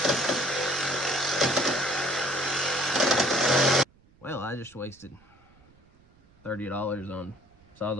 Well, I just wasted $30 on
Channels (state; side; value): noise; right; rumble, 30 dB below the sound